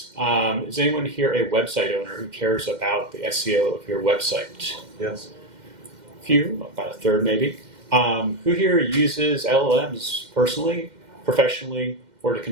Is anyone here a website owner who cares about the SEO of your website? Yes. A few, about a third maybe. Who here uses LLMs personally, professionally, or to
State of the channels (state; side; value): late; left; 2.1 ms